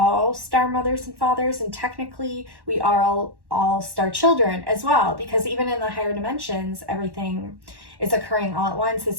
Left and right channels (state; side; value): late; left; 1.1 ms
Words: star mothers and fathers, and technically we are all star children as well, because even in the higher dimensions, everything is occurring all at once.